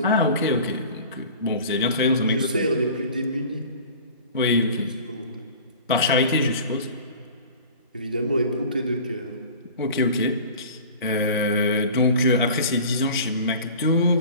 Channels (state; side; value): inverted; both; correlation -0.41